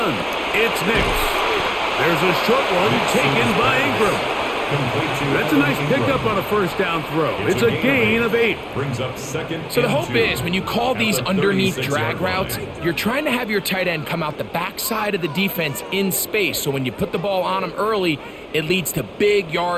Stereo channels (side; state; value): both; identical; correlation 1.00